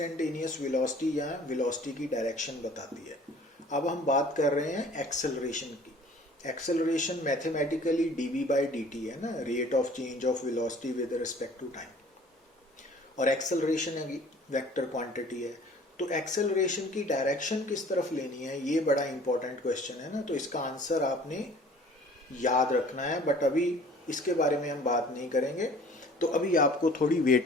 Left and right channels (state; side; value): normal; both; correlation 0.50